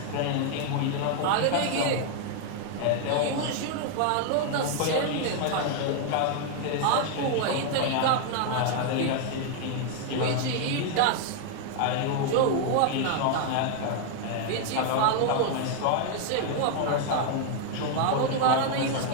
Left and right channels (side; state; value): both; different; correlation 0.00